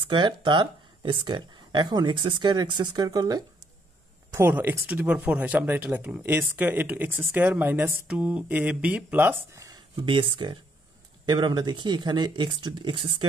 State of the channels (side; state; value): both; normal; correlation 0.70